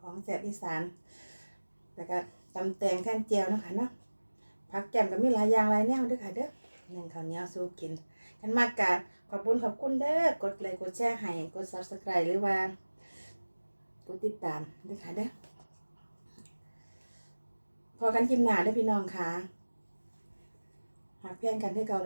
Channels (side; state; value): both; inverted; correlation -1.00